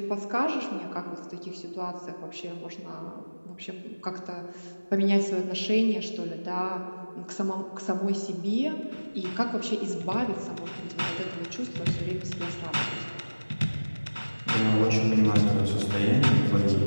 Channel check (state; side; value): inverted; both; correlation -1.00